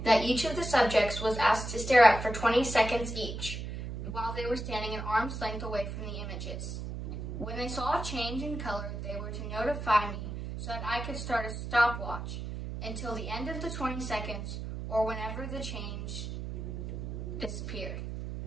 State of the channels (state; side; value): noise; right; hum, 6 dB below the sound